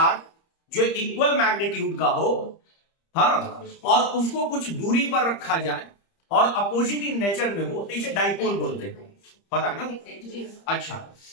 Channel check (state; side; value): late; right; 30 ms